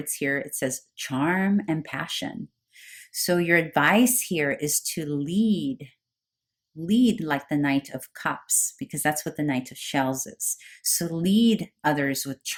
here, it says charm and passion. So your advice here is to lead like the Knight of Cups, because that's what the Knight of Shells is. So lead others with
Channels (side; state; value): both; identical; correlation 1.00